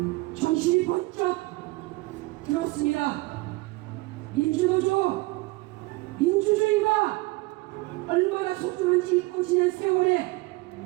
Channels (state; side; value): quieter; left; 22.6 dB